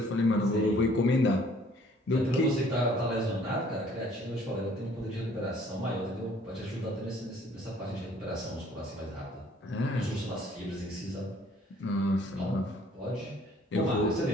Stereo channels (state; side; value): normal; both; correlation 0.58